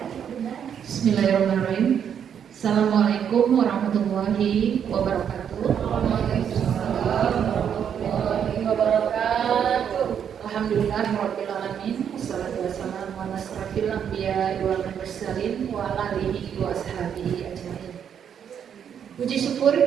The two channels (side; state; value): left; quieter; 8.3 dB